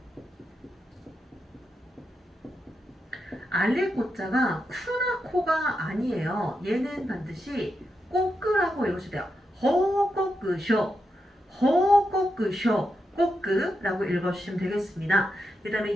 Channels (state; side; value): normal; both; correlation 0.86